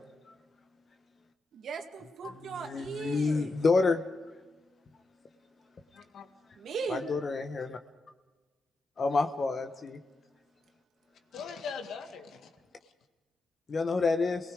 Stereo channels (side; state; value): right; quieter; 3.0 dB